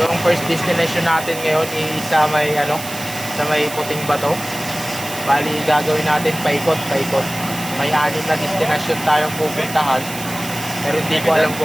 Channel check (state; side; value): noise; right; hiss, 11 dB below the sound